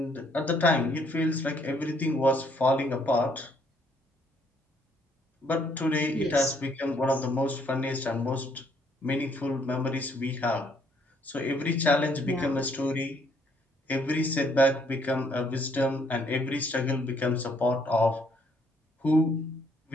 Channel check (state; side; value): normal; both; correlation 0.67